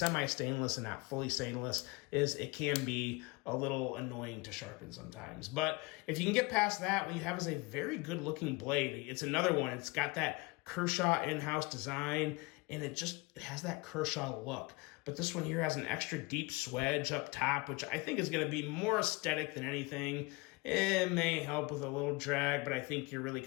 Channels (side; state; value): right; quieter; 25.6 dB